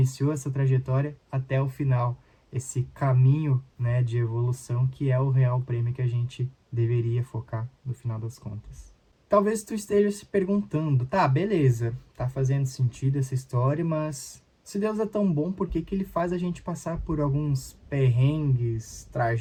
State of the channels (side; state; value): both; identical; correlation 1.00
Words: essa trajetória até o final, esse caminho, né, de evolução que é o real prêmio que a gente deveria focar no final das contas. Talvez tu esteja se perguntando, tá, beleza, tá fazendo sentido essa história, mas se Deus é tão bom, por que que ele faz a gente passar por alguns perrengues,